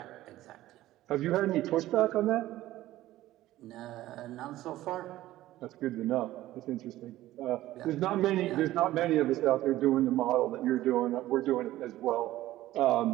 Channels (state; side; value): quieter; left; 15.3 dB